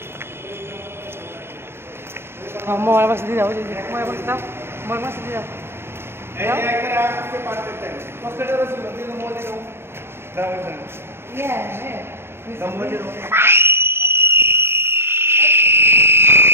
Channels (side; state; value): left; late; 0.12 ms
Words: মোবাইল বাক্স দিয়ে দাও মোবাইল বাক্স দাও মোবাইল বাক্স দিয়ে দাও